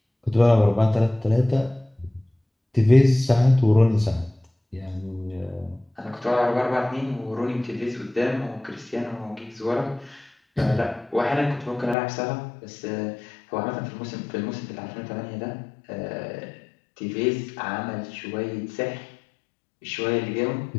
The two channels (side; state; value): right; drops out; at 12.0 s